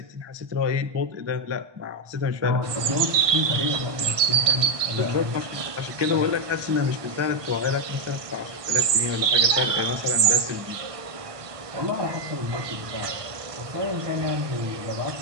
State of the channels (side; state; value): left; late; 1.2 ms